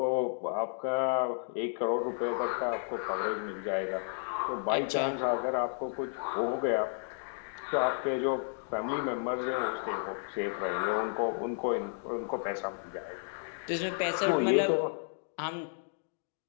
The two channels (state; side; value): silent; right; digital silence